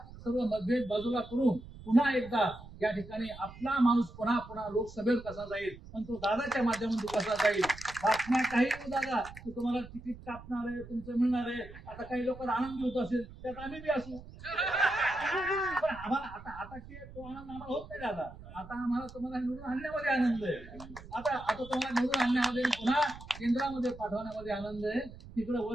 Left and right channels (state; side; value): noise; right; rumble, 16 dB below the sound